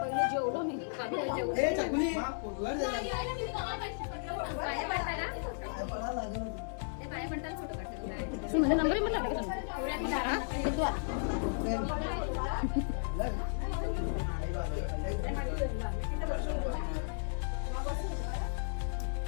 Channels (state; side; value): silent; right; 55 dB below the other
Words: पहिले जेवलो मी खाली जेवू. ए, चकुली. पाया पडताय ना? ते पाया पडताना फोटो काढते तुला. माझा नंबर मला टाका.